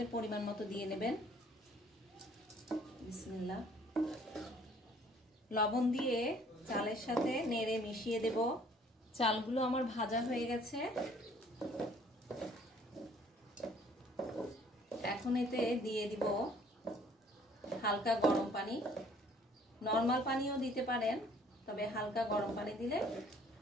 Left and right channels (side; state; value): both; normal; correlation 0.58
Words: পরিমাণ মতো দিয়ে নেবেন। বিসমিল্লাহ। লবণ দিয়ে চালের সাথে নেড়ে মিশিয়ে দেব। চালগুলো আমার ভাজা হয়ে গেছে। এখন এতে দিয়ে দিব হালকা গরম পানি। নরমাল পানিও দিতে পারেন, তবে হালকা গরম পানি দিলে